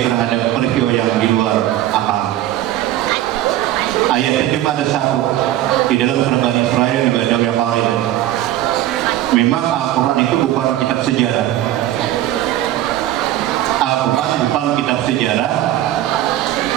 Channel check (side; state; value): left; quieter; 13.6 dB